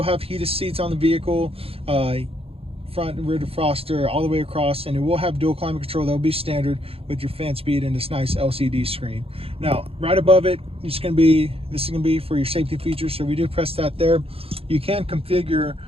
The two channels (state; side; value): late; left; 0.28 ms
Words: have heated seats on the vehicle, front and rear defroster all the way across, and it will have dual climate control that will be standard with your fan speed and this nice LCD screen. Now right above it, this is going to be for your safety features, so we do press that there. You can configure